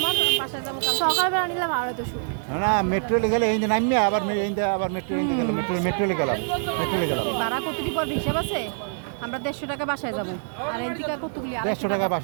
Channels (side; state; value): left; silent; digital silence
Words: বাসায় যাবো কাল সকালবেলা নিলে ভালো তো শুট না মেট্রোলে গেলে এই যে নামিয়ে আবার আবার মেট্রোলে গেলাম মেট্রোলে গেলাম ভাড়া কতটি পর হিসাব আছে আমরা 150 টাকা বাসায় যাবো আর এন থেকে কতগুলি 150 250 টাকা টাকা